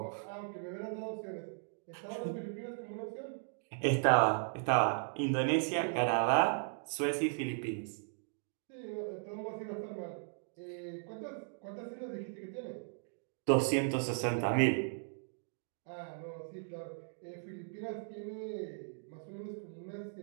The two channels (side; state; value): left; silent; digital silence